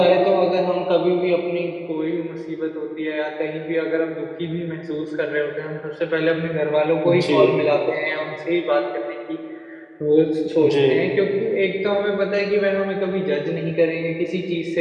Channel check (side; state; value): both; identical; correlation 1.00